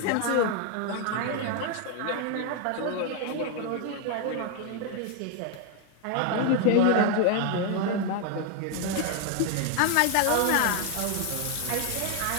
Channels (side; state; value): both; different; correlation 0.00